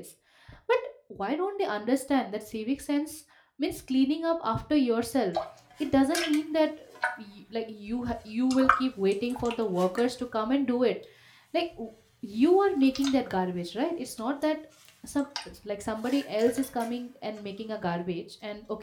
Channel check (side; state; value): both; identical; correlation 1.00